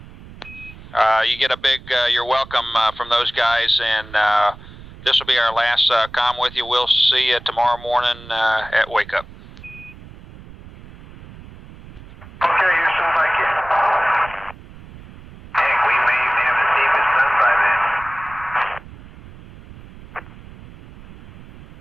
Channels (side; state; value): right; noise; rumble, 18 dB below the sound